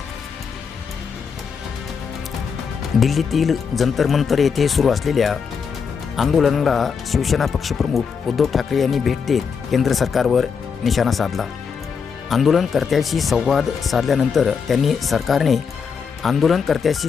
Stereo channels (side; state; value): right; quieter; 6.1 dB